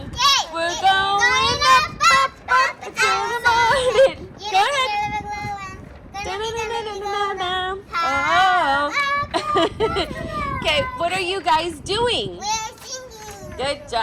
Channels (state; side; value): identical; both; correlation 1.00